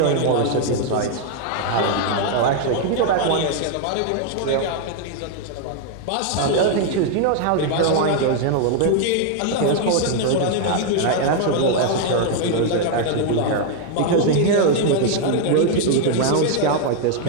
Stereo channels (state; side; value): different; both; correlation 0.00